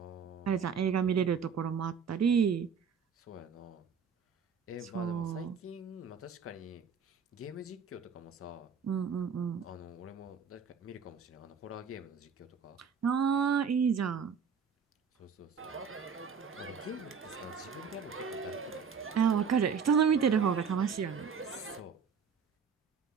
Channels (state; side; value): quieter; left; 6.3 dB